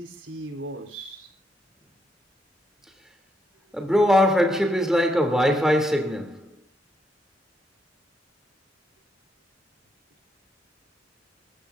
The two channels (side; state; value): both; normal; correlation 0.77